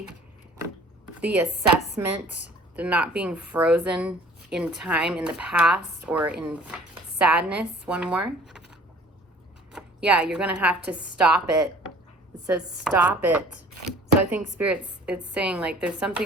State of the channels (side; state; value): both; normal; correlation 0.51